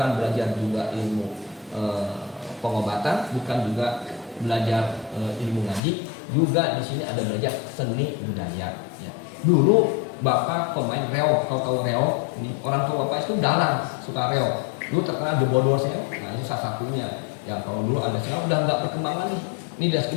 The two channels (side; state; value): right; drops out; at 5.8 s